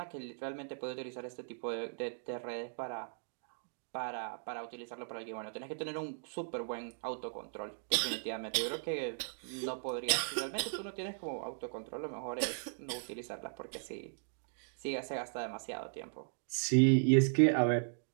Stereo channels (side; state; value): left; silent; digital silence